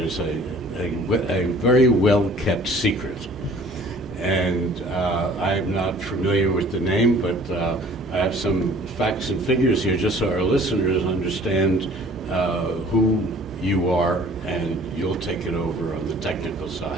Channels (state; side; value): normal; both; correlation 0.52